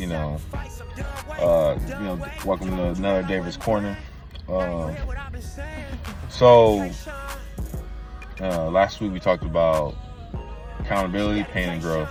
welcome to another David's Corner. Last week we talked about accountability, pain, and growth.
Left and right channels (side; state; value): both; identical; correlation 1.00